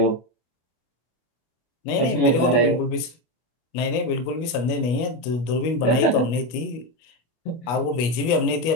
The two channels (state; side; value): late; right; 25 ms